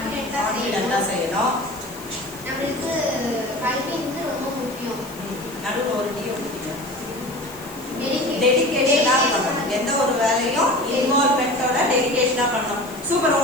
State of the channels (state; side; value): noise; left; hiss, 17 dB below the sound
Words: செய்யணும். நம்மளுக்கு கல்வி வந்து ரொம்ப முக்கியம். நடுவுல ஒரு டீ ஊத்திங்க. டெடிகேஷனா பண்ணணும். எந்த ஒரு வேலையும் இன்வால்வ்மென்ட்டோட டெடிகேஷனா பண்ணணும். சூப்பர்.